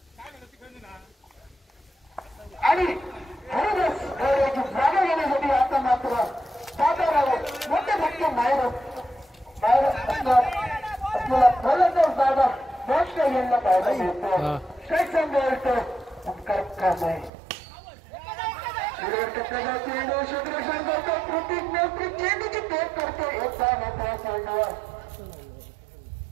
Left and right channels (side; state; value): left; drops out; at 17.3 s